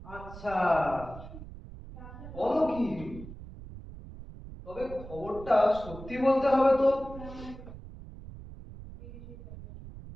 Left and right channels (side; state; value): right; noise; rumble, 14 dB below the sound